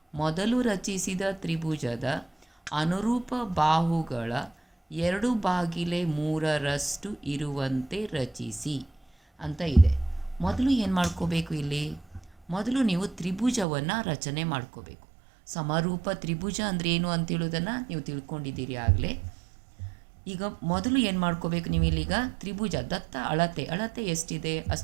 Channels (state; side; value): drops out; left; at 13.7 s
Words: ಮೊದಲು ರಚಿಸಿದ ತ್ರಿಭುಜದ ಅನುರೂಪ ಬಾಹುಗಳ 2/3 ಇರುವಂತೆ ರಚಿಸಿ ಅಂತ ಇದೆ. ಮೊದಲು ಏನು ಮಾಡ್ಕೋಬೇಕು? ಮೊದಲು ನೀವು ತ್ರಿಭುಜವನ್ನು ರಚನೆ ಮಾಡ್ಕೋಬೇಕು. ಸಮರೂಪ ತ್ರಿಭುಜ ಅಂದರೆ ಏನು ಅಂತೇಳೋದನ್ನು ನೀವು ತಿಳ್ಕೊಂಡಿದ್ದೀರಿ ಆಗಲೇ. ಈಗ ಮೊದಲು ಏನು ಮಾಡ್ಕೋಬೇಕು ನೀವು? ಇಲ್ಲಿಗ ತ್ರಿಭುಜ ದತ್ತ ಅಳತೆ ಎಷ್ಟಿದೆ